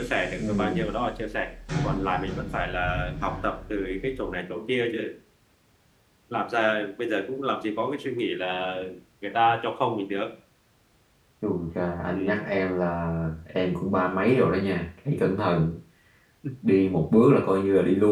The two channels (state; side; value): identical; both; correlation 1.00